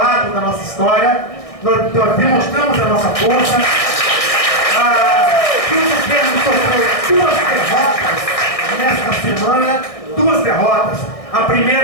da nossa história, nós demonstramos a nossa força, que o governo sofreu 2 derrotas nesta semana, 2 derrotas. A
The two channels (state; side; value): late; right; 1.6 ms